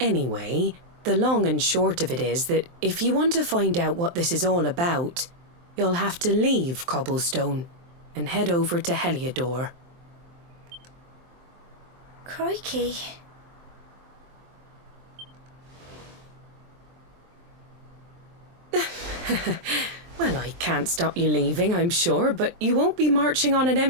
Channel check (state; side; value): late; left; 23 ms